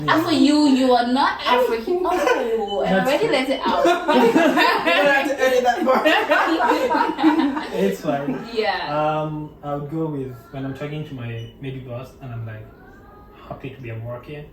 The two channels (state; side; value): identical; both; correlation 1.00